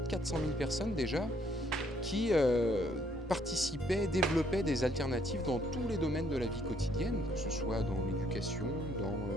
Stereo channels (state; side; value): normal; both; correlation 0.67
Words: 400 000 personnes déjà qui participaient, développaient des alternatives dans tous les domaines de la vie quotidienne, que ce soit dans l'éducation, dans